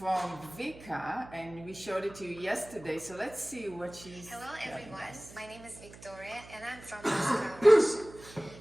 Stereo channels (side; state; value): right; noise; hum, 19 dB below the sound